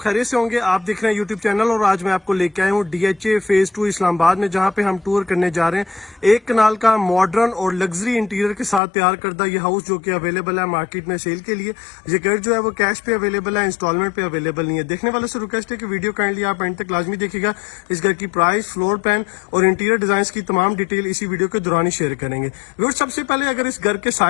से होंगे। आप देख रहे हैं यूट्यूब चैनल और आज मैं आपको लेके आया हूँ DHA फेज 2 इस्लामाबाद में, जहाँ पे हम टूर करने जा रहे हैं। एक कनाल का मॉडर्न और लग्जरी इंटीरियर के साथ तैयार करदा ये हाउस जो कि अवेलेबल है मार्केट में सेल के लिए। ये घर जो है वो कैश पे अवेलेबल है, इंस्टॉलमेंट पे अवेलेबल नहीं है। देखने वाले से रिक्वेस्ट है कि वीडियो काइंडली आप एंड तक लाजमी देखिएगा। इस घर की प्राइस, फ्लोर प्लान और इंटीरियर डिजाइन की तमाम डिटेल इसी वीडियो के दौरान ही शेयर करेंगे। सबसे पहले अगर इस घर के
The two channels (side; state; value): right; drops out; at 8.8 s